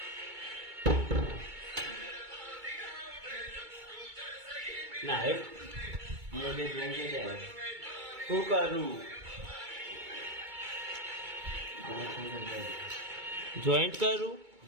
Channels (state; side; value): late; left; 2.2 ms